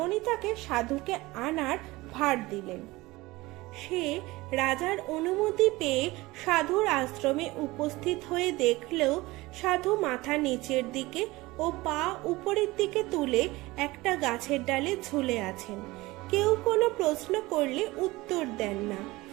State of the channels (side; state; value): left; quieter; 20.6 dB